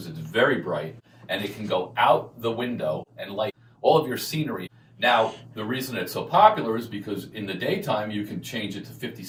it's very bright and it can go out the window and light all of your scenery. Now, the reason it's so popular is because in the daytime, you can change it to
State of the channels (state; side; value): identical; both; correlation 1.00